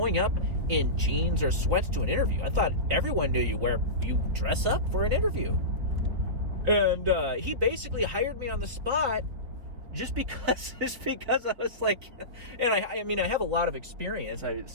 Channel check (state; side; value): late; left; 4.2 ms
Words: up in jeans or sweats to an interview. I thought everyone knew you dress up for an interview. And he basically hired me on the spot just because I was like, and I mean, I have a lot of experience,